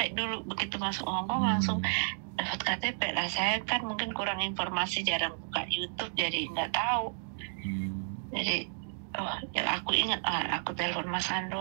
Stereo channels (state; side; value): silent; left; digital silence